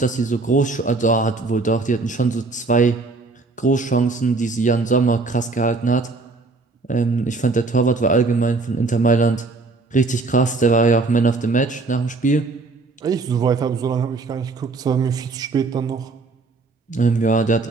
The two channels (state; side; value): quieter; left; 3.7 dB